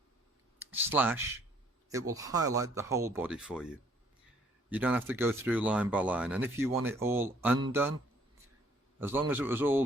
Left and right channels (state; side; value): normal; both; correlation 0.62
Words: / it will highlight the whole body for you. You don't have to go through line by line. And if you want it all undone, as long as it was